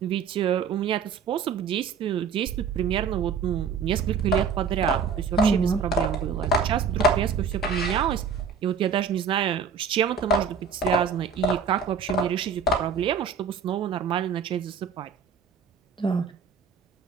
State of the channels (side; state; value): left; quieter; 5.7 dB